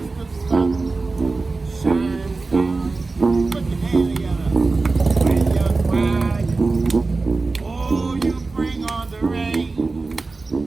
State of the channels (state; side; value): quieter; left; 3.7 dB